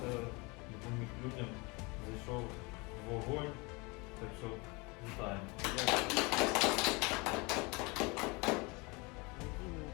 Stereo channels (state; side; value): quieter; right; 27.4 dB